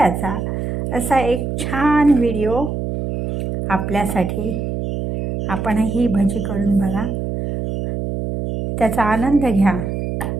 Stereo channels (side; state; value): right; noise; hum, 4 dB below the sound